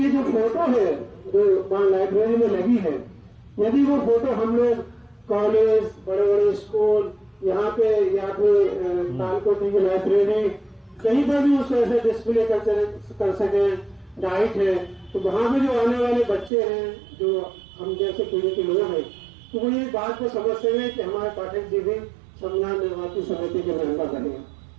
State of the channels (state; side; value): drops out; left; at 16.5 s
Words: ये जो फोटो है जो वहां लाइब्रेरी में लगी है, यदि वो फोटो हम लोग कॉलेज, बड़े बड़े स्कूल, यहाँ पे या फिर तालकोटी की लाइब्रेरी कहीं पर भी उसको ऐसे डिस्प्ले कर सके, डाइट है, तो वहां पे जो आने वाले बच्चे हैं जो हम जैसे पीढ़ी के लोग हैं, तो वो ये बात को समझते हैं कि हमारे पाठक जी भी संविधान निर्माती समिति के मेंबर बने।